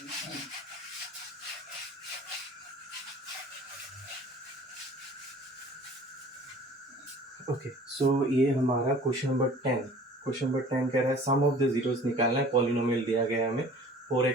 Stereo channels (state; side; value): normal; both; correlation 0.47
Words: Okay, so ये हमारा क्वेश्चन नंबर 10, क्वेश्चन नंबर 10 कह रहा है सम ऑफ द जीरोस निकालना है, पॉलिनोमियल दिया गया है हमें